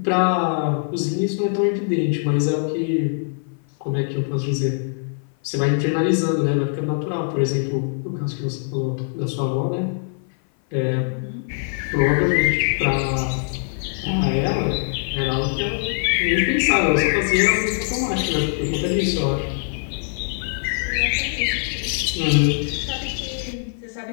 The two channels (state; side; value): silent; right; 57 dB below the other